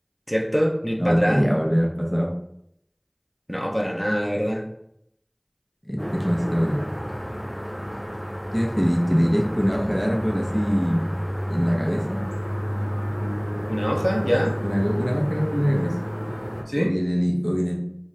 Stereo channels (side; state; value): both; identical; correlation 1.00